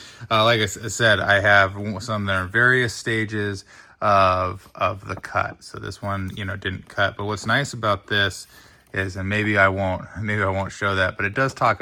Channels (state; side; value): identical; both; correlation 1.00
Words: Like I said, I have some that are in various stages of the cut. So this one, you know, didn't cut. But what's nice about this is, and maybe I won't show that, but it does talk